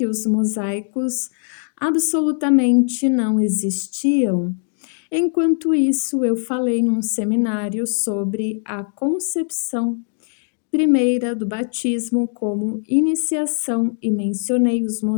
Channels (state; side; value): silent; right; 62 dB below the other